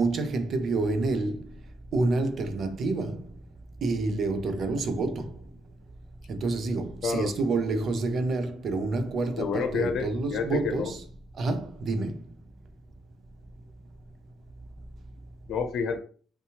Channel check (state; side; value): normal; both; correlation 0.75